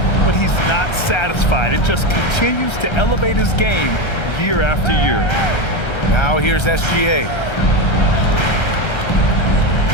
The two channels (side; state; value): right; late; 1.3 ms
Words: but he's not satisfied. It just continues to elevate his game year after year. Now here's SGA.